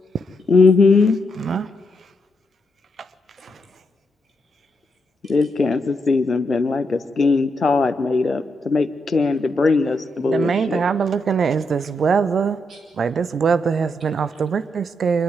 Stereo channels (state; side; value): normal; both; correlation 0.80